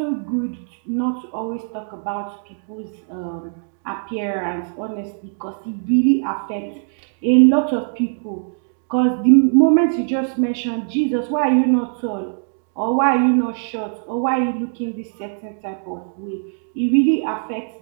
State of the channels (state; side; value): silent; left; digital silence